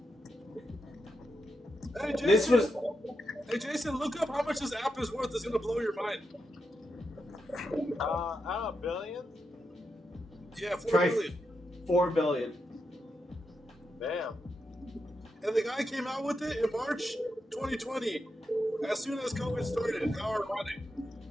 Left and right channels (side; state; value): both; normal; correlation 0.85